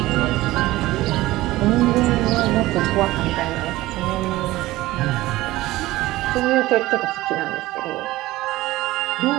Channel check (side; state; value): left; quieter; 17.6 dB